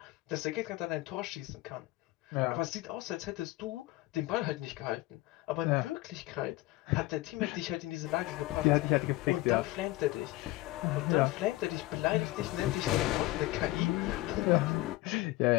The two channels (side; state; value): right; quieter; 18.7 dB